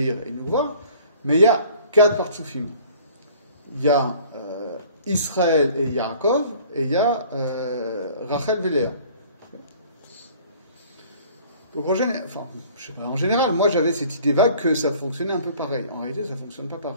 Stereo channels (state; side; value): inverted; both; correlation -0.51